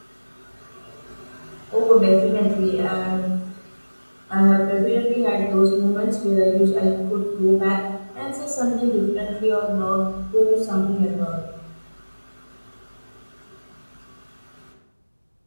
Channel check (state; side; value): inverted; both; correlation -1.00